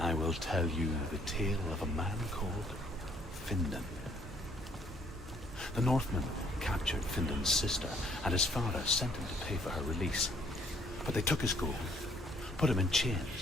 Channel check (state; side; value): normal; both; correlation 0.64